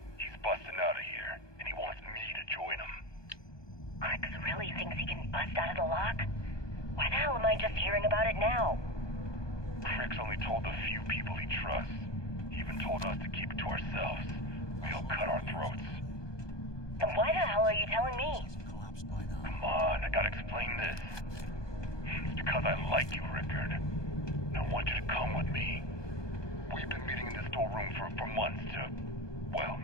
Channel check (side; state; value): right; late; 1.2 ms